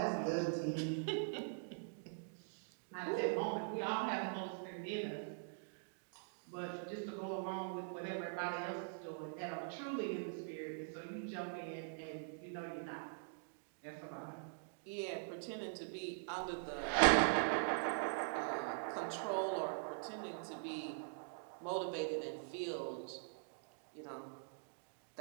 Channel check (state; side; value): silent; left; digital silence